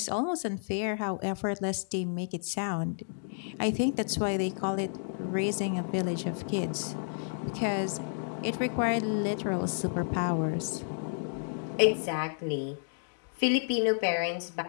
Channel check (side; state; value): right; silent; digital silence